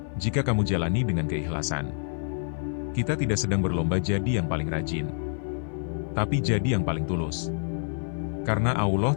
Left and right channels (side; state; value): right; silent; 55 dB below the other